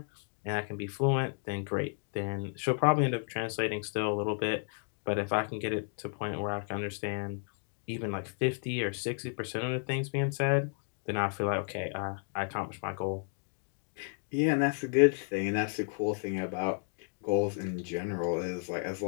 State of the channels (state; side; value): silent; right; 56 dB below the other